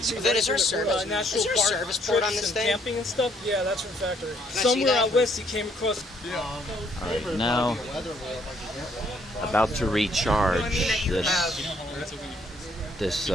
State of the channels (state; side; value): normal; both; correlation 0.67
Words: see. Is there a service? National Is there a park service port on trips this and thing? camping and stuff. Yeah, that's from factory. I see Somewhere that? out west, he came across. All right, now about to recharge this